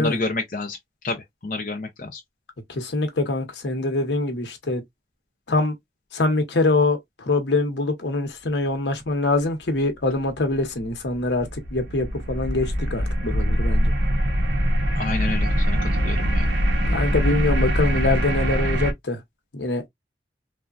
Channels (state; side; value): normal; both; correlation 0.53